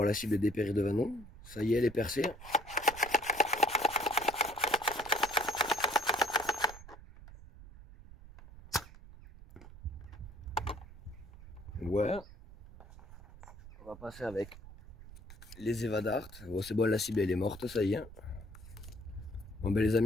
la cible dépérir devant nous. Ça y est, elle est percée. Ouais. On va passer avec les Eva Dart. Bon, c'est bon, la cible elle est morte, ça y est. Bon ben les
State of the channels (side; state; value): right; noise; rumble, 17 dB below the sound